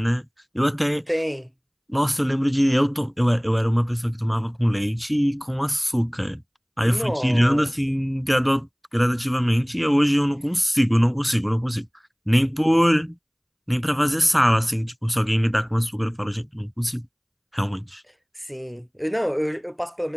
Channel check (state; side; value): identical; both; correlation 1.00